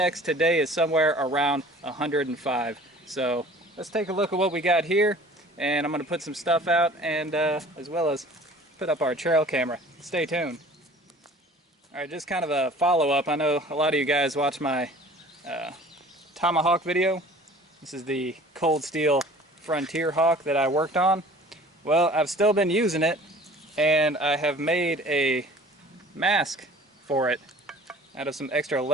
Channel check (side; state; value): both; normal; correlation 0.47